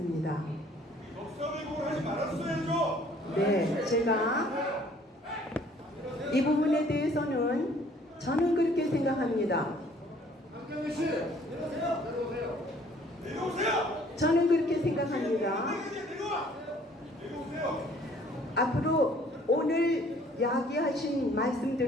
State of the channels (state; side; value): normal; both; correlation 0.57